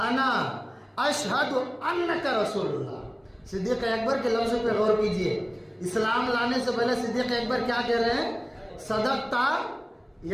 اشہد انک رسول اللہ۔ صدیق اکبر کے لفظ پہ غور کیجئے، اسلام لانے سے پہلے صدیق اکبر کیا کہہ رہے ہیں؟ صدقتا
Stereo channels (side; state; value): both; identical; correlation 1.00